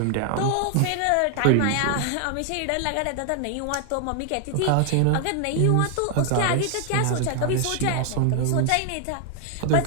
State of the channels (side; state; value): both; different; correlation 0.00